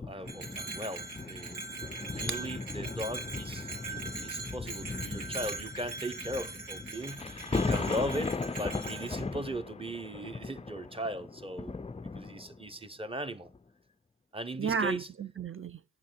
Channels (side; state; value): both; normal; correlation 0.51